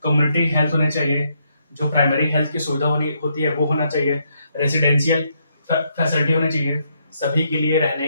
कम्युनिटी हेल्थ होने चाहिए, जो प्राइमरी हेल्थ की सुविधा होती है वो होना चाहिए। रेजिडेंशियल फैसिलिटी होनी चाहिए, सभी के लिए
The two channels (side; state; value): both; inverted; correlation -0.75